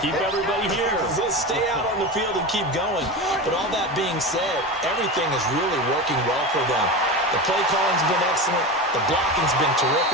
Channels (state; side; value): normal; both; correlation 0.24